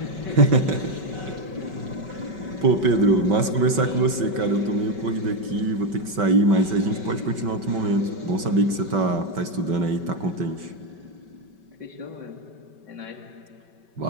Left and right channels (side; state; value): left; late; 5.2 ms